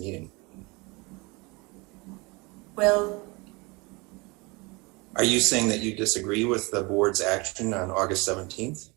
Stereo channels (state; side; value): quieter; left; 26.6 dB